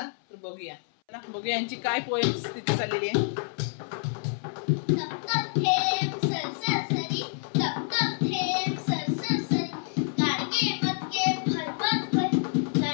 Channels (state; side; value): silent; right; 59 dB below the other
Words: तर बघूया यांची काय पोएम स्थिती चाललेली आहे.